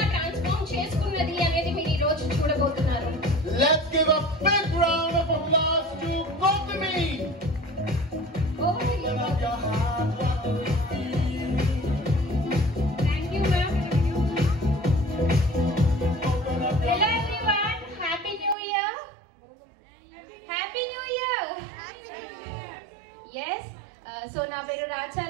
transform చేసుకున్నది అనేది మీరు ఈ రోజు చూడబోతున్నారు. Let's give a big round of applause to Gautami. Thank you, ma'am. Hello everyone, happy new year. Happy new year. Happy New Year. Yes, so నా పేరు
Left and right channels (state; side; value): drops out; left; at 18.6 s